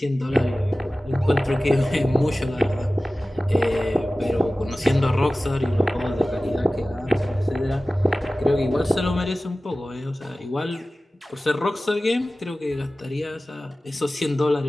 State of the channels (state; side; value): normal; both; correlation 0.96